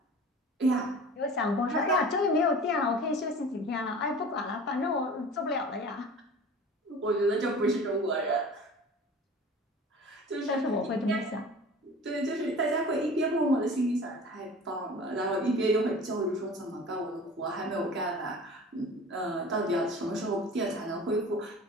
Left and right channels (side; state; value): both; normal; correlation 0.40